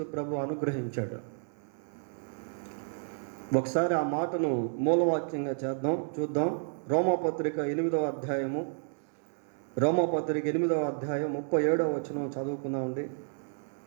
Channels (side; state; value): left; silent; digital silence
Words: ప్రభు అనుగ్రహించాడు. ఒకసారి ఆ మాటను మూలవాక్యంగా చూద్దాం. రోమాపత్రిక 8వ అధ్యాయము, రోమాపత్రిక 8వ అధ్యాయం 37వ వచనం చదువుకుందామండి.